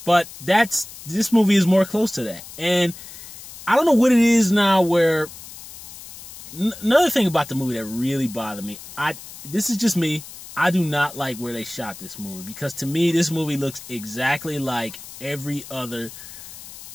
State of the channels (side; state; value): left; noise; hiss, 15 dB below the sound